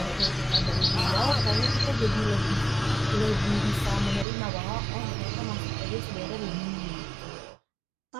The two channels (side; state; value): left; drops out; at 4.2 s